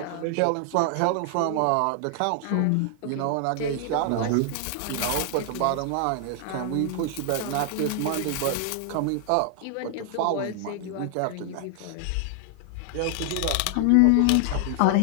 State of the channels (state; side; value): different; both; correlation 0.00